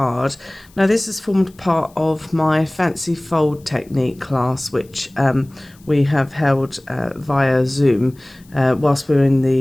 Now this has formed part of my fancy fold technique class which we have held via Zoom whilst we were in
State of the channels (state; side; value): noise; left; hiss, 29 dB below the sound